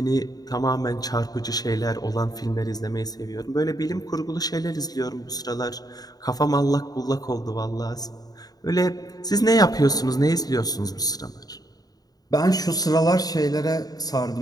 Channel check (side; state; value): right; late; 0.18 ms